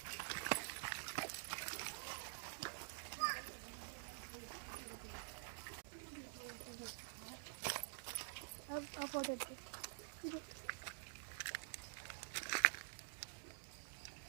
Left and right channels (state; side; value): silent; left; digital silence